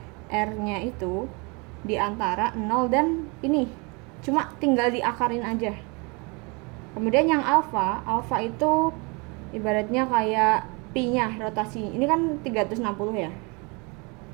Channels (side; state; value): left; quieter; 30.1 dB